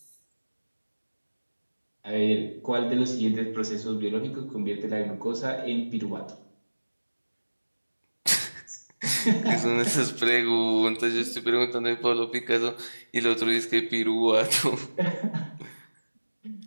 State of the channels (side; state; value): both; inverted; correlation -1.00